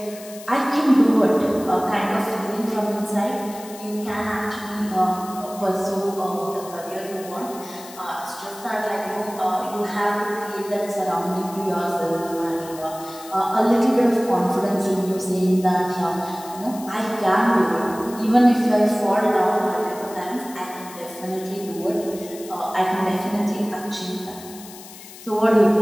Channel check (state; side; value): noise; left; hiss, 17 dB below the sound